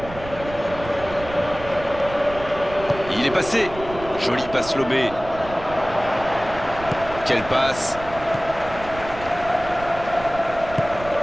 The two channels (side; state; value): right; noise; rumble, 14 dB below the sound